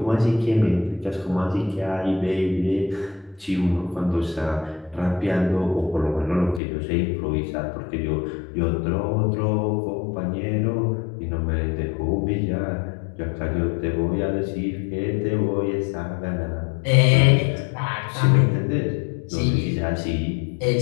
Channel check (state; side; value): drops out; right; at 6.6 s